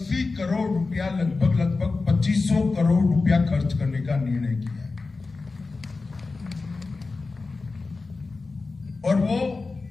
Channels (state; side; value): quieter; right; 3.9 dB